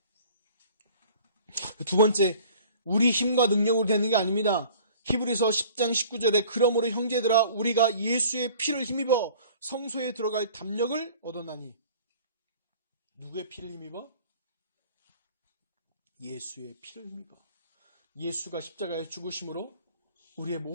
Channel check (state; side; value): inverted; both; correlation -0.49